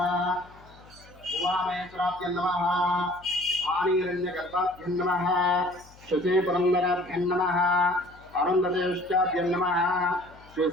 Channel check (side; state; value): left; noise; hum, 24 dB below the sound